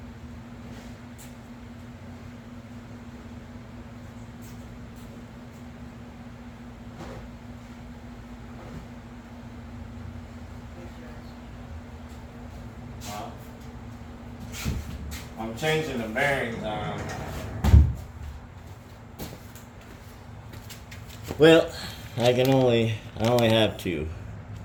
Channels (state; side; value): identical; both; correlation 1.00